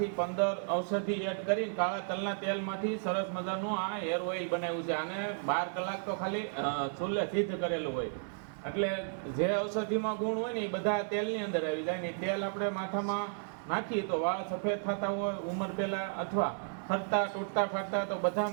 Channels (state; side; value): silent; left; 55 dB below the other